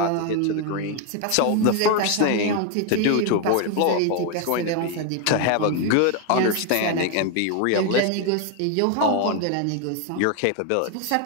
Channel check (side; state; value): both; different; correlation 0.01